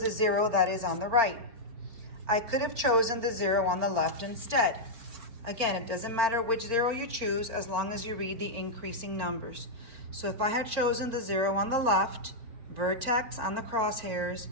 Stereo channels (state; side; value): late; left; 4.4 ms